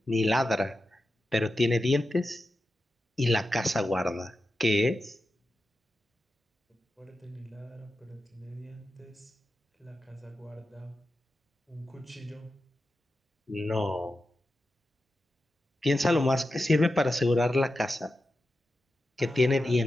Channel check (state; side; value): normal; both; correlation 0.91